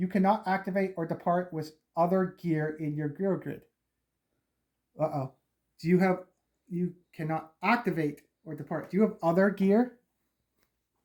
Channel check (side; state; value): both; identical; correlation 1.00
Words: cannot activate or depart with other gear in your gear grid. Uh-oh. You cannot activate or depart. Do you have other gear?